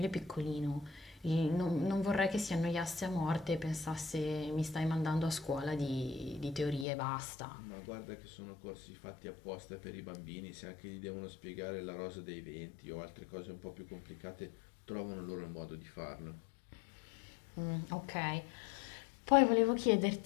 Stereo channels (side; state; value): right; drops out; at 6.9 s